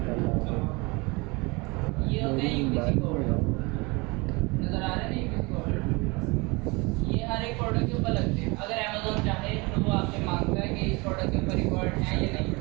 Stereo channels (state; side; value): quieter; left; 26.4 dB